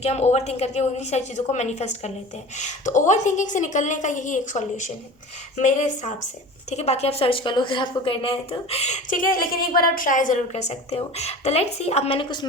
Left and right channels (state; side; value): normal; both; correlation 0.37